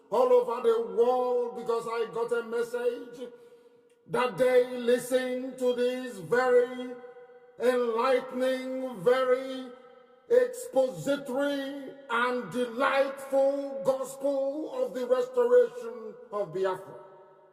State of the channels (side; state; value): both; identical; correlation 1.00